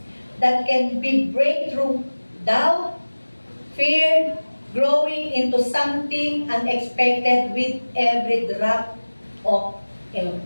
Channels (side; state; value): both; inverted; correlation -1.00